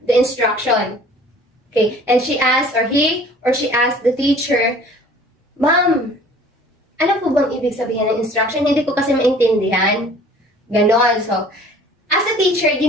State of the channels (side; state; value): both; normal; correlation 0.50